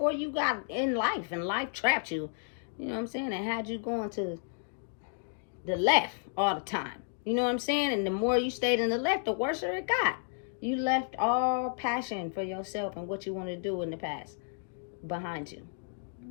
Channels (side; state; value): right; silent; digital silence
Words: you got in life. And life trapped you. You know what I'm saying? And had you going to the left all the time. You know what I'm saying? And the more you stayed in the left, the worse it got. You left all passion for yourself and what you want to do in the past behind you.